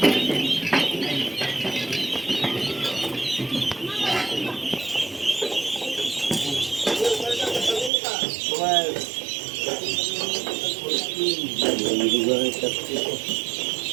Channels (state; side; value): drops out; left; at 7.9 s